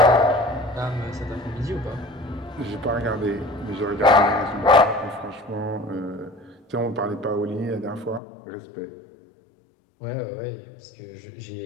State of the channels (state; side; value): drops out; right; at 8.2 s